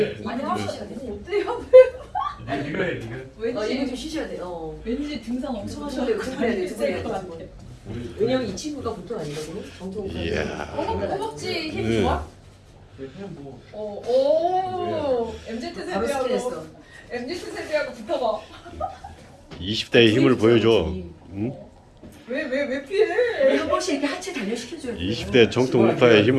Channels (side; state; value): both; identical; correlation 1.00